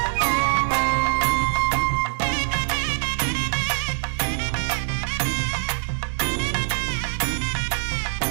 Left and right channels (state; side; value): silent; left; digital silence